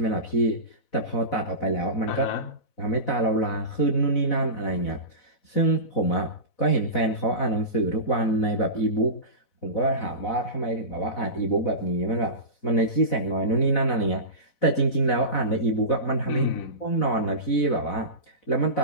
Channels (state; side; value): late; right; 4.0 ms